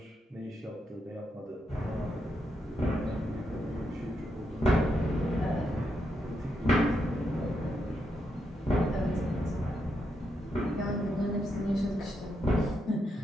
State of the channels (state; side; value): normal; both; correlation 0.82